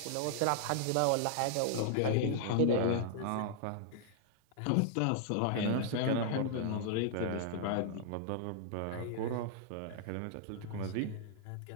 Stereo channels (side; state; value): both; different; correlation -0.01